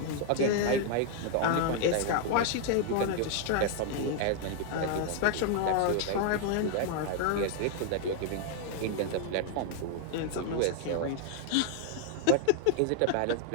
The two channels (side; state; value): both; different; correlation 0.00